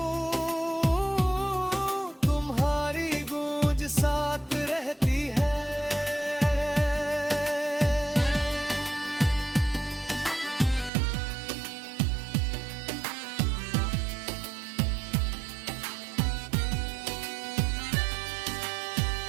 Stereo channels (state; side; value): drops out; left; at 10.9 s